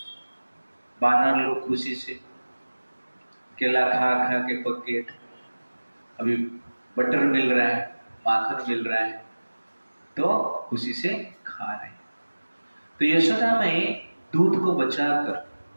वानर लोग खुशी से केला खा खा के पके, अभी बटर मिल रहा है, माखन मिल रहा है, तो खुशी से खा रहे हैं। तो यशोदा में दूध को बचाकर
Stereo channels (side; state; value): both; inverted; correlation -1.00